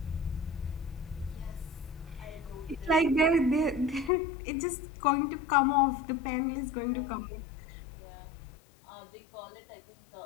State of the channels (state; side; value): drops out; right; at 4.1 s